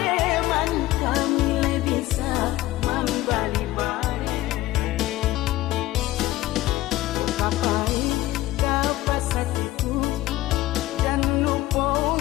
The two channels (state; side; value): quieter; right; 16.3 dB